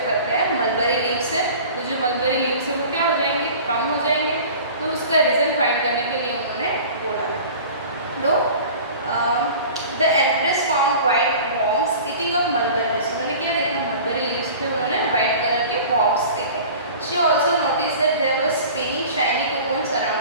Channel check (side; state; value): both; inverted; correlation -0.41